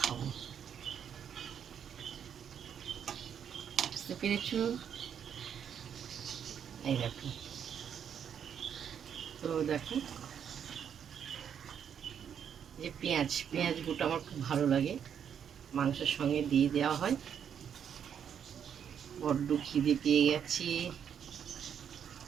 বুঝতে পেরেছ? এই দেখো, তো দেখো যে পেঁয়াজ পেঁয়াজ গোটা আমার খুব ভালো লাগে, মাংসের সঙ্গে দিয়ে দেওয়া হয়। বড্ড খিদে পেয়ে গেছি।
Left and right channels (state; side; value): quieter; left; 8.3 dB